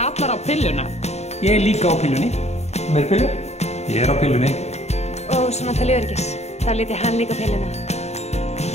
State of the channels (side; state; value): right; late; 0.32 ms